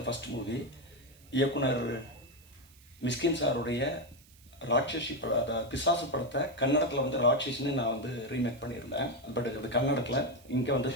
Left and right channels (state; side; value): noise; right; hiss, 26 dB below the sound